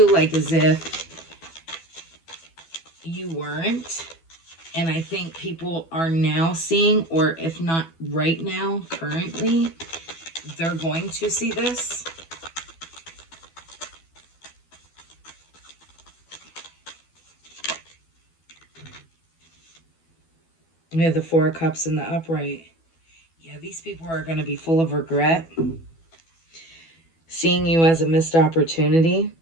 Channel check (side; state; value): right; late; 12 ms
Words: like as if you weren't. And I think people are now seeing, or if not right now, currently, they're going to see this. We have the Four of Cups in the upright. Yeah, these people are going to be full of regret. Seeing you as a missed opportunity.